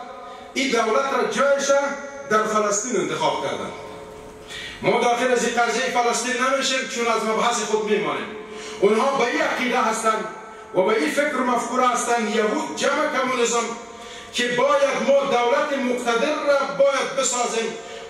این دولت را جایش در فلسطین انتخاب کردند. ما داخل از این قضیه فلسطین نمیشیم چون از مبحث خود میمانیم. اونها به این عقیده هستند و به این فکر و مفکوره هستند یهود جمع کمونیسم که باید ما دولت مقتدر را باید بسازیم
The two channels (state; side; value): identical; both; correlation 1.00